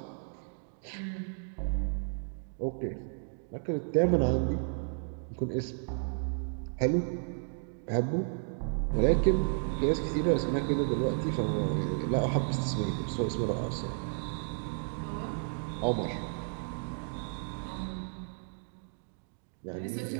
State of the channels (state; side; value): silent; left; 56 dB below the other